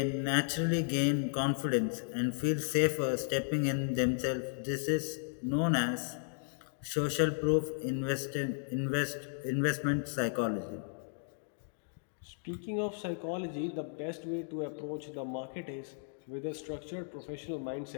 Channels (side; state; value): right; silent; digital silence